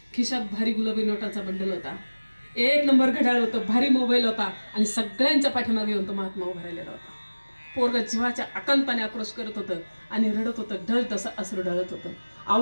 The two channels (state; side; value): inverted; both; correlation -1.00